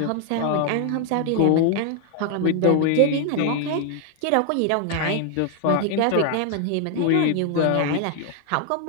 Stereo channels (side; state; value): both; different; correlation 0.00